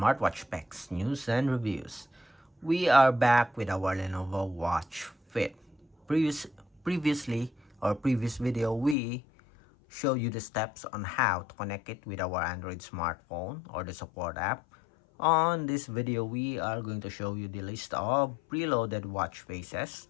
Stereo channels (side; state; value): right; drops out; at 9.0 s